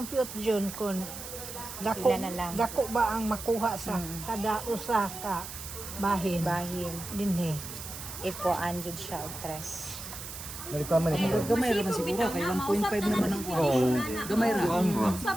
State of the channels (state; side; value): noise; right; hiss, 10 dB below the sound